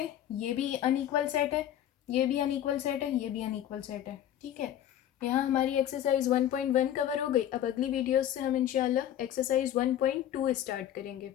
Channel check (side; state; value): right; quieter; 11.2 dB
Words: ये भी अनइक्वल सेट है, ये भी अनइक्वल सेट है, ये भी अनइक्वल सेट है, ठीक है। यहाँ हमारी एक्सरसाइज 1.1 कवर हो गई। अब अगली वीडियोस से हम इंशाल्लाह एक्सरसाइज 1.2 स्टार्ट करेंगे।